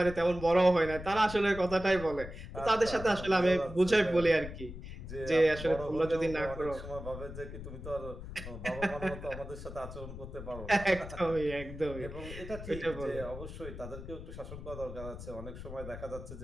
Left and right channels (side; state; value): left; noise; rumble, 11 dB below the sound